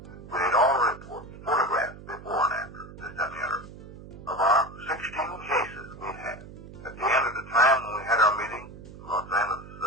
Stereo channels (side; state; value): right; noise; hum, 16 dB below the sound